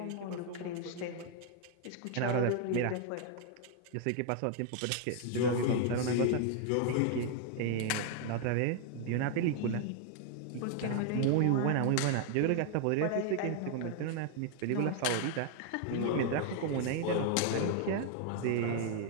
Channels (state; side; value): different; both; correlation 0.00